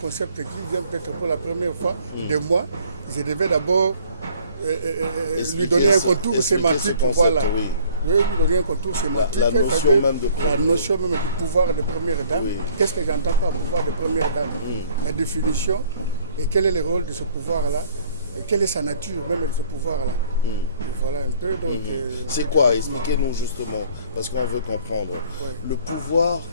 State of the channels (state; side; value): inverted; both; correlation -0.57